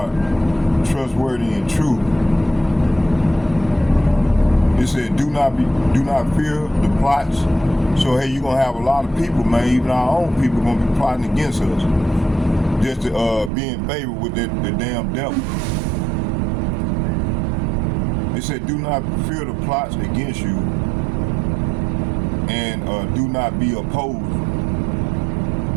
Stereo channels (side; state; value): left; drops out; at 13.5 s